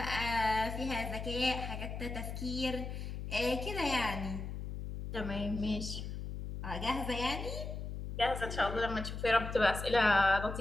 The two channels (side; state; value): left; noise; hum, 6 dB below the sound